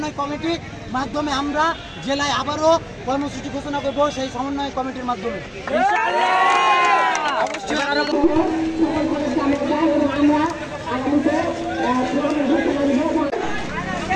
কমিটির মাধ্যমে আমরা জেলায় আবারও কর্মসূচি ঘোষণা করব সেই সমন্বয় কমিটির মাধ্যমে।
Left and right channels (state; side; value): identical; both; correlation 1.00